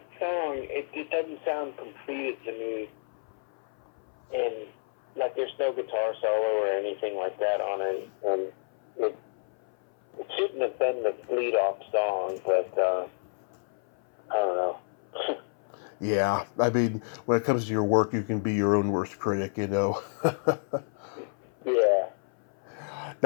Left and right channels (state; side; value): silent; right; 58 dB below the other